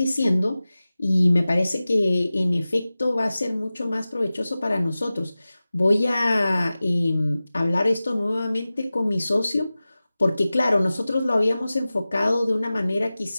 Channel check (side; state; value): both; inverted; correlation -0.96